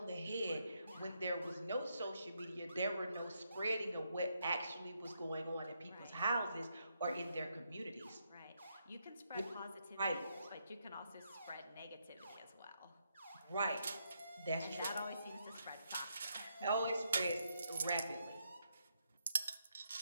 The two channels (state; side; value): inverted; both; correlation -0.79